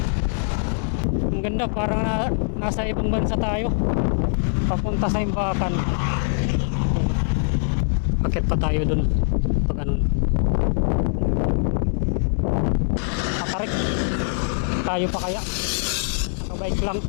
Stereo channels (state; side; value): silent; right; digital silence